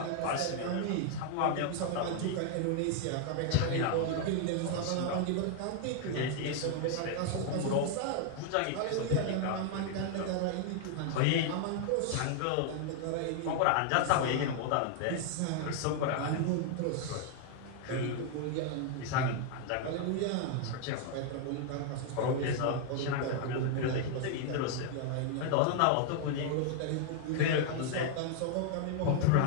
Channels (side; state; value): both; different; correlation 0.00